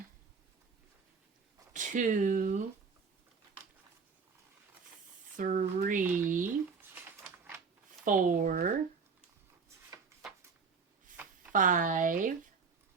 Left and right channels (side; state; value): left; quieter; 5.3 dB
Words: 2, 3, 4, 5,